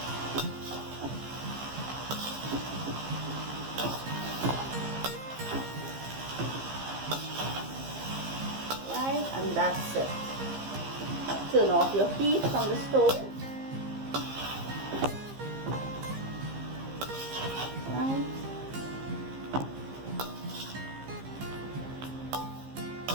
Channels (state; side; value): late; left; 15 ms